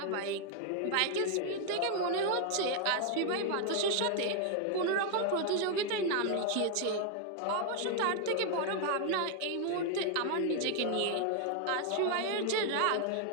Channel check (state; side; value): different; both; correlation 0.00